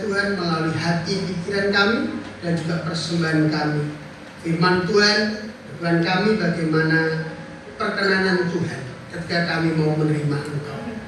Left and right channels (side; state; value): both; identical; correlation 1.00